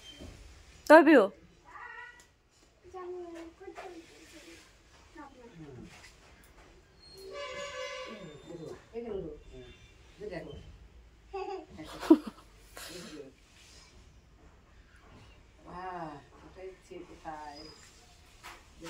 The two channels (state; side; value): identical; both; correlation 1.00